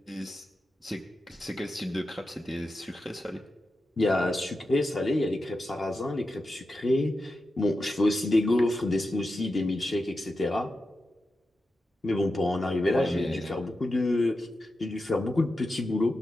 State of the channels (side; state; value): both; normal; correlation 0.90